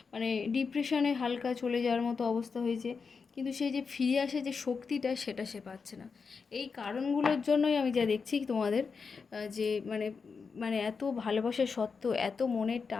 মানে ডিপ্রেশনে হালকা চলে যাওয়ার মতো অবস্থা হয়েছে, কিন্তু সেই যে ফিরে আসে যে শক্তিটা সেটা সে পাচ্ছে না। এই কারণগুলোর জন্যই আমি যা দেখছি তোমাদের যে মানে মানে এত ভালোবাসা সত্ত্বেও, এত মনের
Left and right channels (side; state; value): right; quieter; 5.3 dB